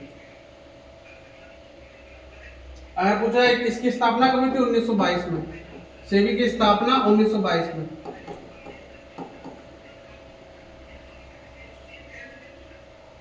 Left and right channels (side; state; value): both; identical; correlation 1.00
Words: अगर पूछा है इसकी स्थापना कब हुई थी? 1922 में। सेबी की स्थापना 1922 में।